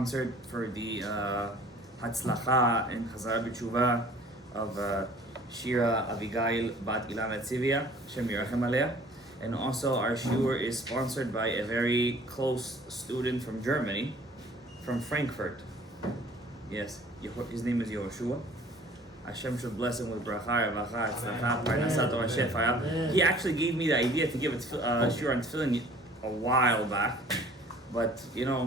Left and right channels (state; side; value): normal; both; correlation 0.51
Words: for the Hatzlacha and Chazara B'Tshuva of Shira Avigail Bat Ilana Tzivia, Shem Yirachem Aleah. And also our shiur is sponsored by a very close student from Germany, from Frankfurt. Yes, his name is Yehoshua. Hashem should bless him with bracha, revacha, tzlacha, parnasat, Torah shefaya. He actually gave me the idea to give a shiur on tefillin a while back. But, you